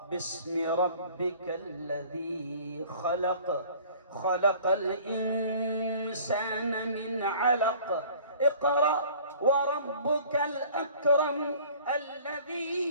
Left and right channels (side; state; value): both; inverted; correlation -0.49